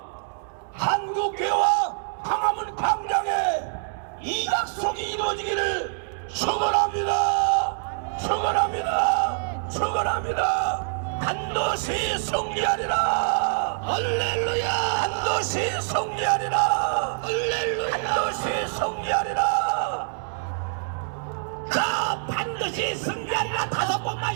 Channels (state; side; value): silent; left; digital silence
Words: 한국교회와 광화문 광장에 이 약속이 이루어지기를 축원합니다. 축원합니다. 축원합니다. 반드시 승리하리라. 할렐루야. 반드시 승리하리라. 할렐루야. 반드시 승리하리라. 자, 반드시 승리하리라. 5번만